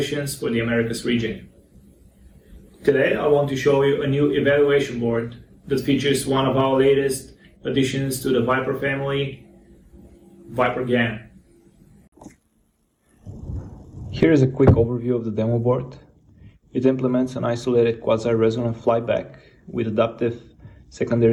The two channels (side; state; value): both; identical; correlation 1.00